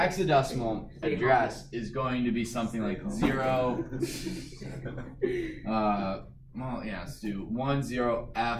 address is going to be something like 0. Let's do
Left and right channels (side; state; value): both; identical; correlation 1.00